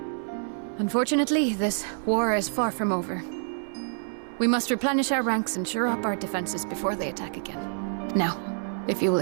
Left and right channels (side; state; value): left; silent; 60 dB below the other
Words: Unfortunately, this war is far from over. We must replenish our ranks and shore up our defenses before they attack again. Now, if you will